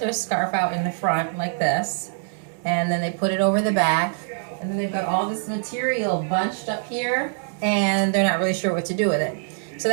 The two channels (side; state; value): left; silent; digital silence